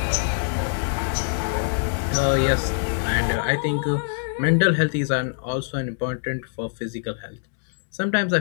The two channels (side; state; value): right; silent; digital silence